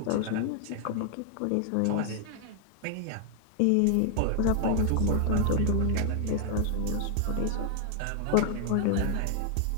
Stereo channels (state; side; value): different; both; correlation 0.00